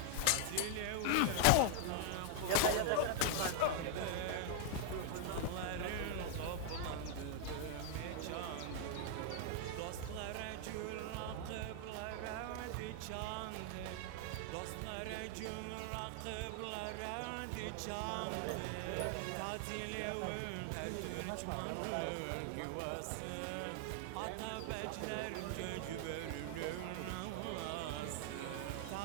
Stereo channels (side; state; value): both; different; correlation 0.00